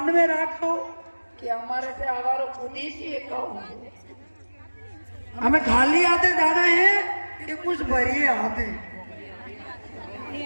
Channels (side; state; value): both; inverted; correlation -1.00